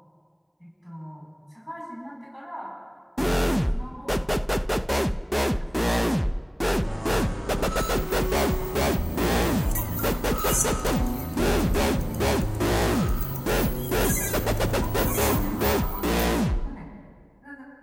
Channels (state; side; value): identical; both; correlation 1.00